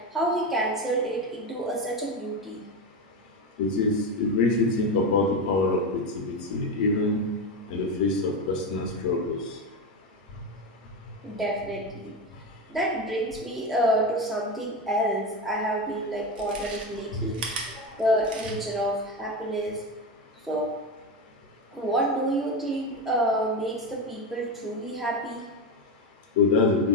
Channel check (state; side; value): normal; both; correlation 0.16